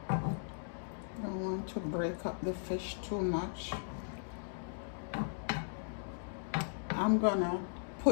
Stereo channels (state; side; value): silent; right; digital silence